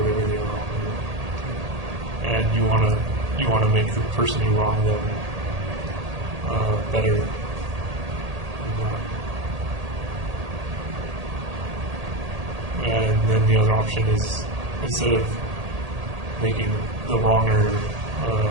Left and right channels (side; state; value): left; late; 1.8 ms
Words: they are wrong. And you want to make the person who wronged them better. And then the other option is, instead of making the wronger